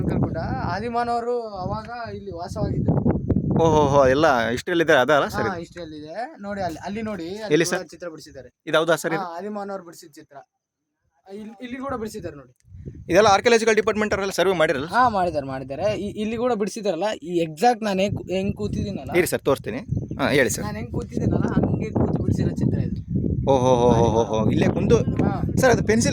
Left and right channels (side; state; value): both; identical; correlation 1.00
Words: ಗುಡ್ಡ. ಆದಿಮಾನವರು ಅವಾಗ ಇಲ್ಲಿ ವಾಸವಾಗಿದ್ರು. ಓಹೋ ಎಲ್ಲ ಹಿಸ್ಟ್ರಿಯಲ್ಲಿದೆ ಅದಲ್ಲ ಸರ್ ಇದು? ಹಿಸ್ಟ್ರಿಯಲ್ಲಿದೆ ನೋಡಿ. ಅಲ್ಲಿ ನೋಡಿ, ಎಲ್ಲಿ ಸರ್? ಚಿತ್ರ ಬಿಡಿಸಿದ್ದಾರೆ. ಇದು ಹೌದಾ ಸರ್ ಇದು? ಆದಿಮಾನವರು ಬಿಡಿಸಿದ ಚಿತ್ರ. ಇಲ್ಲಿ ಕೂಡ ಬಿಡಿಸಿದ್ದಾರೆ ನೋಡಿ. ಇದೆಲ್ಲ ಆರ್ಕಿಯಾಲಜಿಕಲ್ ಡಿಪಾರ್ಟ್ಮೆಂಟ್ ಅವರೆಲ್ಲ ಸರ್ವೆ ಮಾಡಿರಲ್ಲ? ಮಾಡಿದ್ದಾರೆ. ಇಲ್ಲಿ ಕೂಡ ಬಿಡಿಸಿದಾರಲ್ಲ. ಈ ಎಕ್ಸಾಕ್ಟ್ ನಾನು ಹೆಂಗ್ ಕೂತಿದ್ದೀನಲ್ಲ, ಇರಿ ಸರ್ ತೋರಿಸ್ತೀನಿ. ಹೇಳಿ ಸರ್. ನಾನು ಹೆಂಗ್ ಕೂತಿದ್ದೀನಲ್ಲ ಹಂಗೆ ಕೂತು ಬಿಡಿಸಿರೋ ಚಿತ್ರ ಇದು. ಓಹೋ ಇಲ್ಲೇ ಕುಂದು ಸರ್. ಅದು